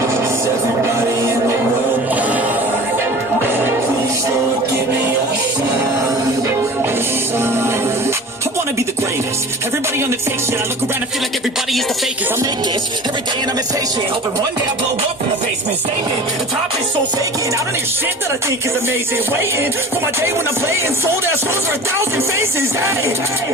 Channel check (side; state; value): both; normal; correlation 0.40